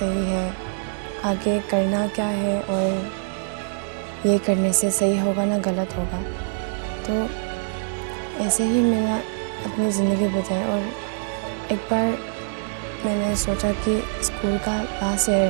है, आगे करना क्या है, और ये करने से सही होगा ना गलत होगा। तो ऐसे ही मैंने अपनी ज़िंदगी बिताई। और एक बार मैंने सोचा कि स्कूल का लास्ट ईयर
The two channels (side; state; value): left; silent; 63 dB below the other